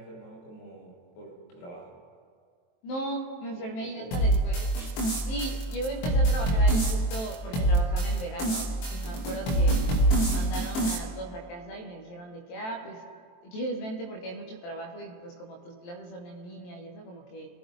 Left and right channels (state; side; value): late; right; 23 ms